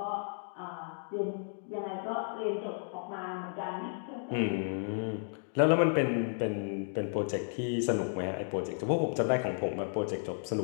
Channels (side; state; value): right; silent; digital silence